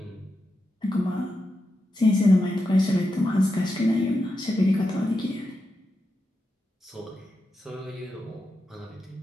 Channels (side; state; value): both; normal; correlation 0.88